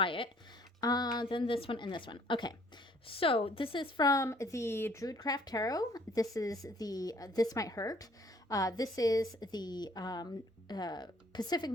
it. Then this one and this one. Okay, so this is from the Druidcraft Tarot. This is the This Might Hurt. This is the Pacific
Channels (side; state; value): both; normal; correlation 0.59